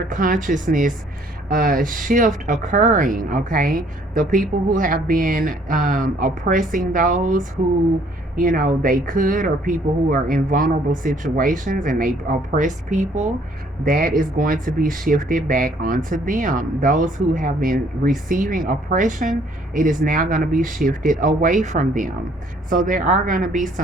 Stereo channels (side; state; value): both; normal; correlation 0.61